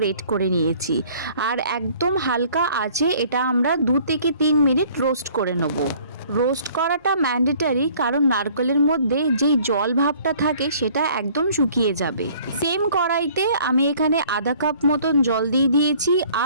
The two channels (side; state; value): both; inverted; correlation -0.55